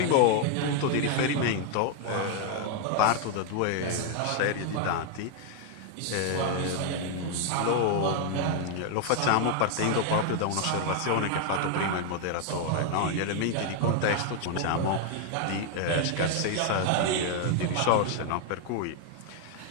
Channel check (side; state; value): both; different; correlation 0.00